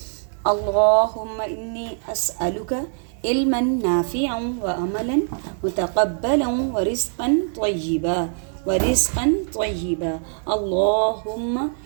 اللہم انی اسألک علما نافعا وعملا متقبلا ورزقا طیبا۔ اللہم،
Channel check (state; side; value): silent; left; 63 dB below the other